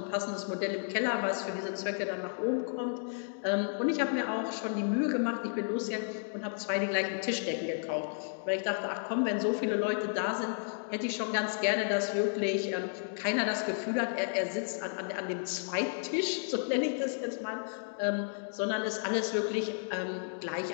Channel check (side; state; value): right; silent; digital silence